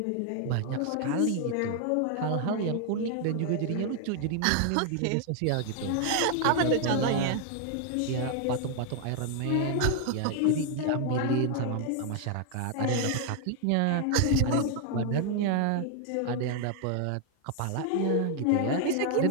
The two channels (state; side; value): different; both; correlation 0.00